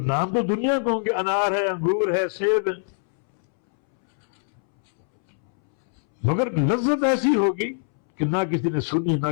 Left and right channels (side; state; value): right; silent; 63 dB below the other